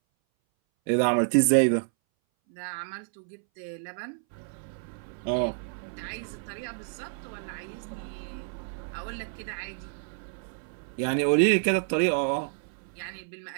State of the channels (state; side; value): silent; left; 58 dB below the other